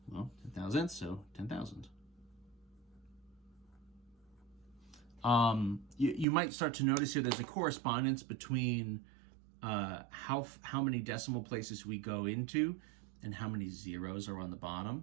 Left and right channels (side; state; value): left; drops out; at 6.2 s